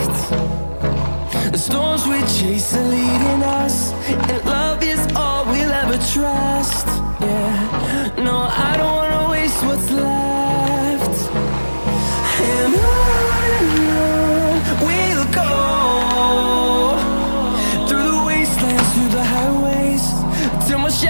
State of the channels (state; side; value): inverted; both; correlation -1.00